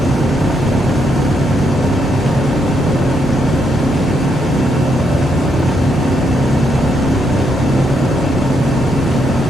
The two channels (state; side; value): normal; both; correlation 0.77